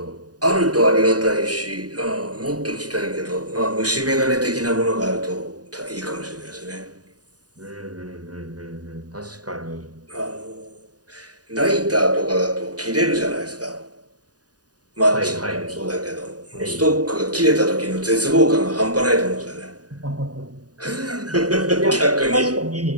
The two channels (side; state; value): left; late; 0.68 ms